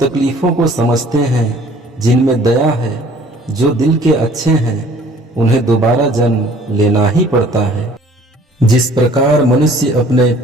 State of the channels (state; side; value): normal; both; correlation 0.54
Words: को समझते हैं, जिनमें दया है, जो दिल के अच्छे हैं, उन्हें दोबारा जन्म लेना ही पड़ता है। जिस प्रकार मनुष्य अपने